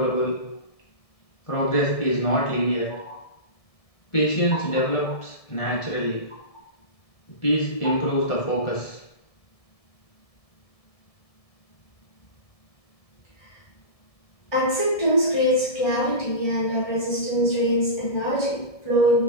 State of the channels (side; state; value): right; late; 1.7 ms